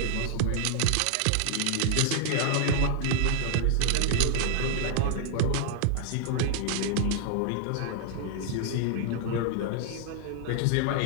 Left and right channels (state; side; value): different; both; correlation 0.00